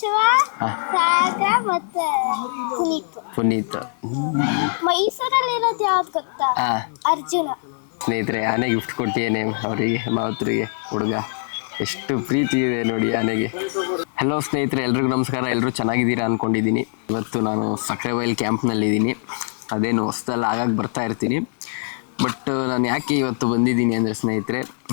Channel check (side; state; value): right; silent; digital silence